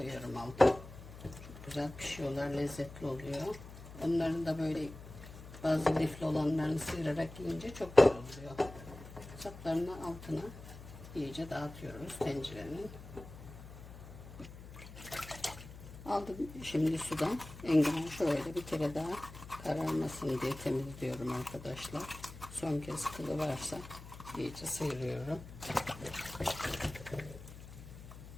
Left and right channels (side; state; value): left; noise; hum, 15 dB below the sound